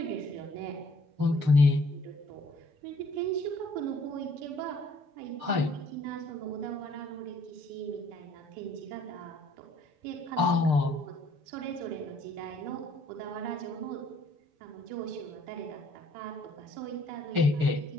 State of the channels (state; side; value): late; left; 6.7 ms